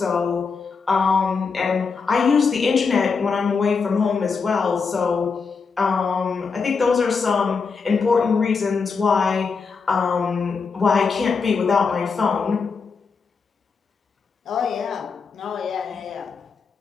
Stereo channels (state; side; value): quieter; right; 5.1 dB